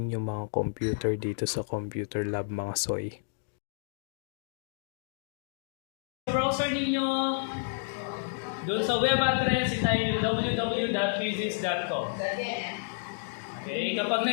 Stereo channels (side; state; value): right; silent; digital silence